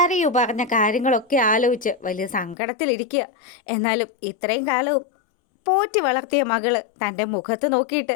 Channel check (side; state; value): right; drops out; at 2.6 s